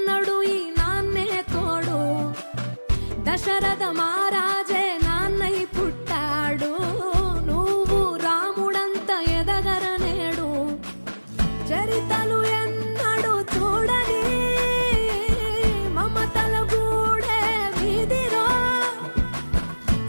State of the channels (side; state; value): both; inverted; correlation -1.00